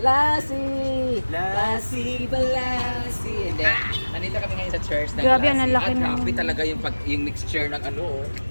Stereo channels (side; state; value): both; inverted; correlation -1.00